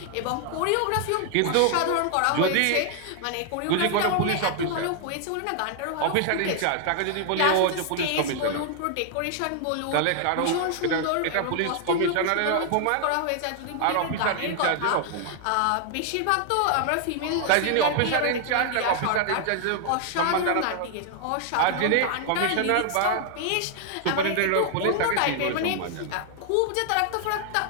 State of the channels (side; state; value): both; different; correlation 0.00